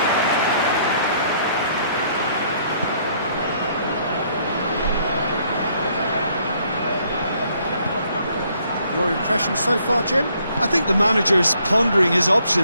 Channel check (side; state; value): both; inverted; correlation -0.66